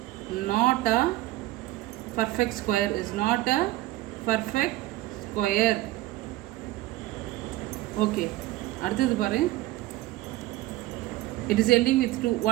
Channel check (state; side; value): quieter; left; 17.0 dB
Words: not a perfect square, is not a perfect square. Okay, அடுத்தது பாரு. It is ending with 2.